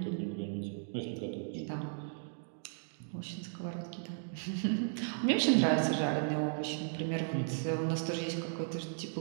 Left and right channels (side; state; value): left; silent; digital silence